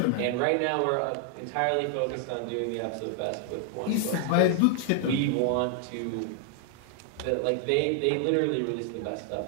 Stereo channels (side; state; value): both; different; correlation 0.00